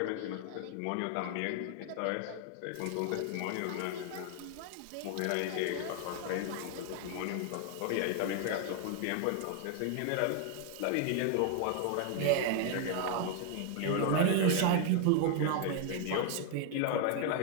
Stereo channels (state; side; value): different; both; correlation 0.00